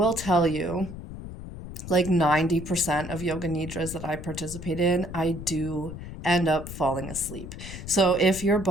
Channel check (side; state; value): left; noise; rumble, 11 dB below the sound